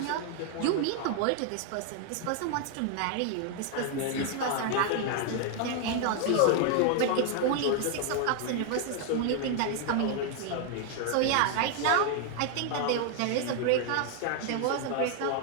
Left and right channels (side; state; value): both; different; correlation 0.00